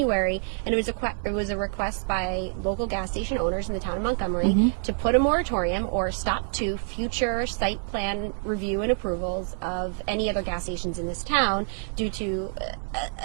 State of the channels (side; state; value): left; silent; 60 dB below the other